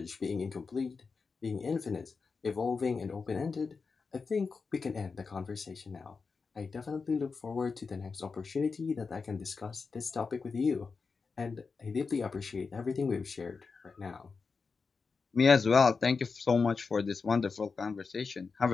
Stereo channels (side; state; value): right; quieter; 4.8 dB